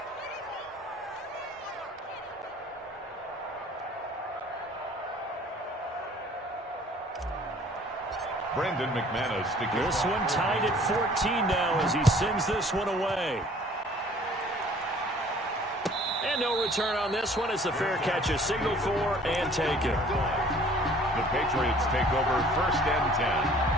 Brandon McManus to kick This off. one tied at 14 now as he sends this one away. And And no return on this one as the fair catch is signaled for and taken. The Patriots take over 1st and 10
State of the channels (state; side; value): normal; both; correlation 0.53